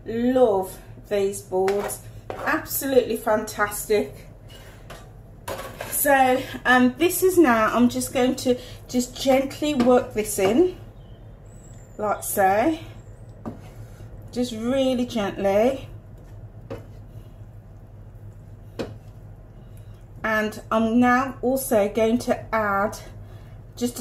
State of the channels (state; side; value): identical; both; correlation 1.00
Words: love these boards, absolutely fantastic. So this is now, I'm just going to just gently work this in like so, just really gently. And I'm now also going to add just